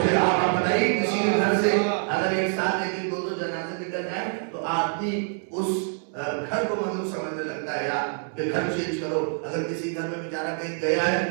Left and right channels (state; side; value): silent; left; 55 dB below the other